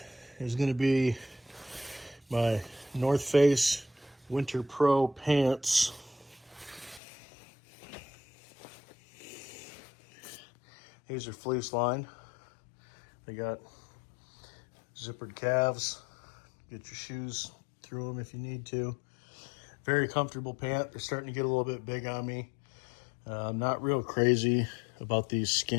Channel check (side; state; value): right; drops out; at 7.0 s